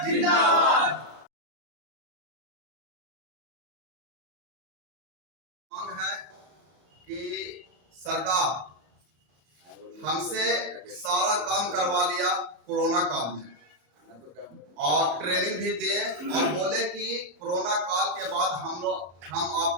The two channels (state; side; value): late; left; 34 ms